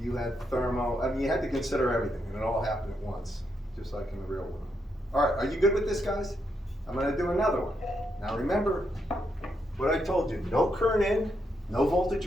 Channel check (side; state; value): both; normal; correlation 0.80